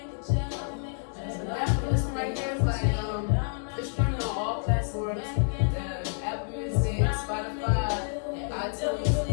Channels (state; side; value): silent; right; digital silence